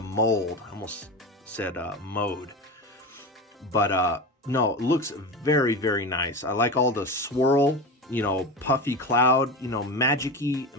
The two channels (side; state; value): both; normal; correlation 0.24